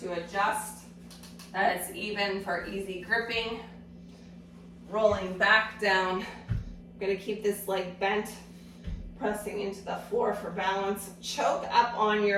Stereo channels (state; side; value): identical; both; correlation 1.00